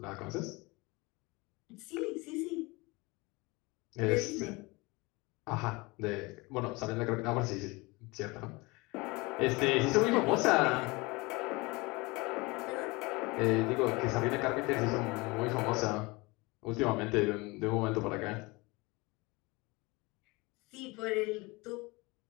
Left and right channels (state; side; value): quieter; right; 24.6 dB